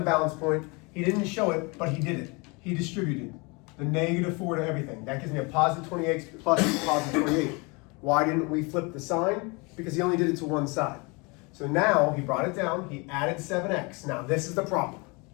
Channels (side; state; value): right; quieter; 28.7 dB